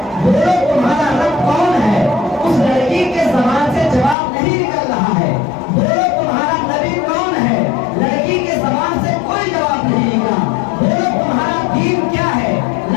بولو تمہارا رب کون ہے، اس لڑکی کے زبان سے جواب نہیں نکل رہا ہے، بولو تمہارا نبی کون ہے، لڑکی کے زبان سے کوئی جواب نہیں نکلا، بولو تمہارا دین کیا ہے،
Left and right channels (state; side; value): drops out; right; at 4.2 s